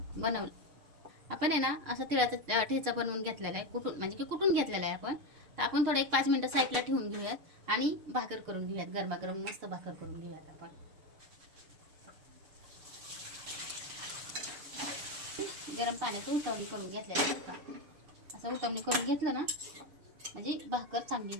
बनवलं आपण आहे ना असं तिळाचा ठेचा बनवून घेतलेला आहे, कुटून म्हणजे की कुटून घेतलेला आहे आपण. तर आपण थोडं एक 5 मिनिटं साईडला ठेवून घेऊयात आणि भाकर करून घेऊयात. गरमागरम मस्त भाकर करून घेऊयात आपण. गरम पाण्यात उतवणी करून घेतलेलं आहे. असं उतवणी करून घेतलं ना म्हणजे भाकर चांगली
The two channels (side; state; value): left; late; 6.5 ms